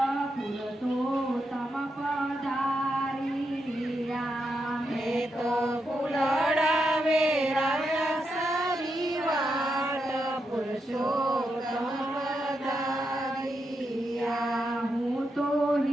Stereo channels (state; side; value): normal; both; correlation 0.84